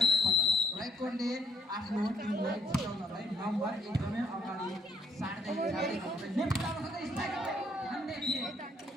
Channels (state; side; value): normal; both; correlation 0.67